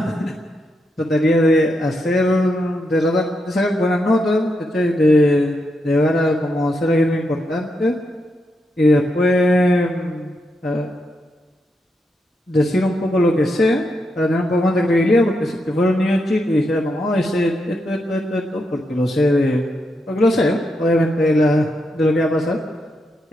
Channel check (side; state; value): both; normal; correlation 0.83